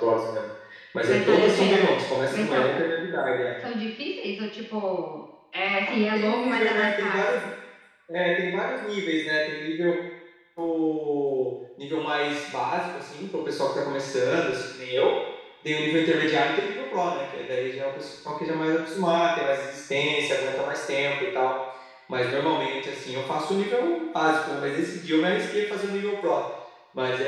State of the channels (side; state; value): both; identical; correlation 1.00